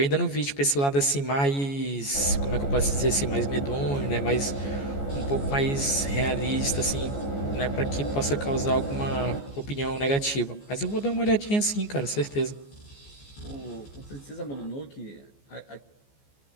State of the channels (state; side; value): late; right; 14 ms